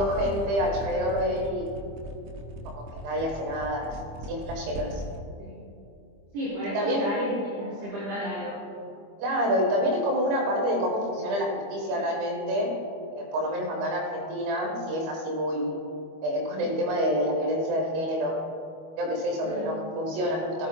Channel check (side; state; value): left; late; 25 ms